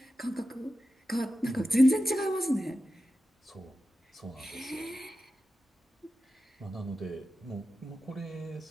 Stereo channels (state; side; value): normal; both; correlation 0.92